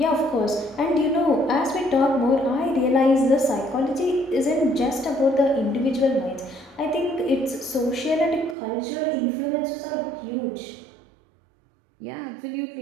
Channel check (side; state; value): left; drops out; at 8.6 s